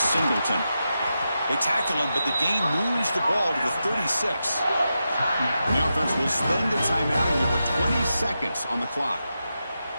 They tackle him, but the gain moves the ball to the 36. The offense will spend a timeout here with 20 seconds on the clock.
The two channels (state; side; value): inverted; both; correlation -0.89